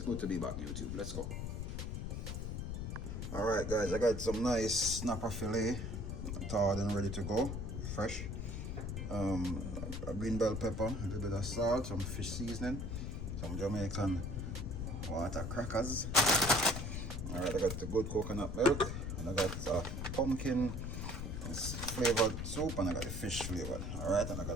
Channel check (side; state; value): left; noise; rumble, 4 dB below the sound